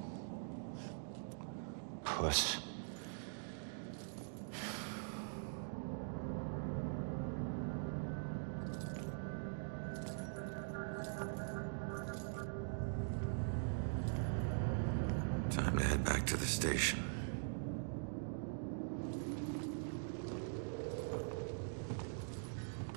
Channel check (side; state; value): left; silent; digital silence